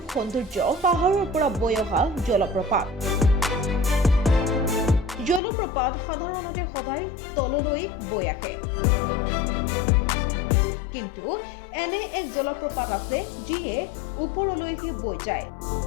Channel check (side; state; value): right; drops out; at 5.4 s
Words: সৌন্দৰ্য পাহাৰৰ পৰা বৈ অহা জলপ্ৰপাত। জলপ্ৰপাত সাধাৰণতে সদায় তললৈ বৈ আহে, কিন্তু এনে এক জলপ্ৰপাত আছে যিয়ে ওপৰলৈহে বৈ যায়।